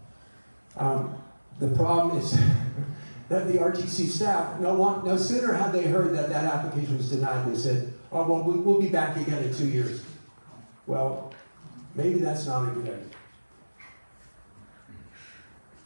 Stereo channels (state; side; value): inverted; both; correlation -1.00